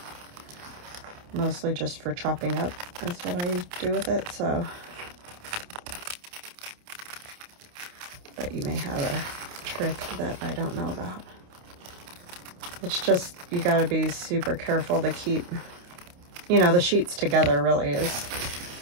Mostly just for chopping up is what I do with it. So, but you may have a trick that I don't know about. It's just, you gotta be super careful to keep, you know, the sheets together really is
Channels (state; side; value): late; left; 28 ms